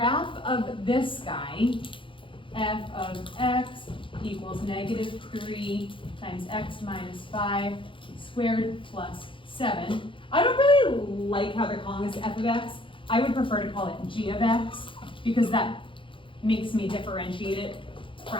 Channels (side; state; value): right; late; 0.25 ms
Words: of this guy, f of x equals -3 times x minus 5 squared plus 7. I don't really like how they're calling this f of x. I would prefer to call it g of x because that makes me differentiate it